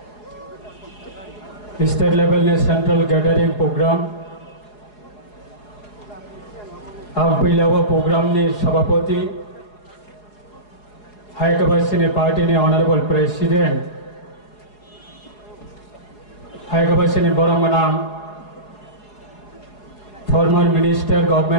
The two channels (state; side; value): late; right; 4.8 ms